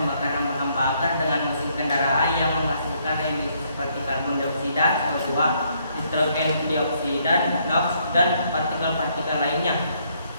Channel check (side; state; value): both; inverted; correlation -0.70